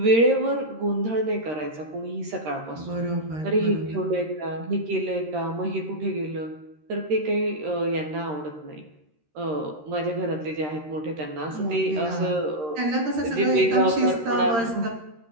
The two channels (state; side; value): late; left; 13 ms